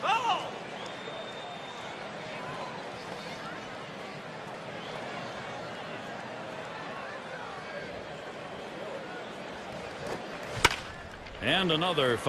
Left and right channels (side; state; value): both; identical; correlation 1.00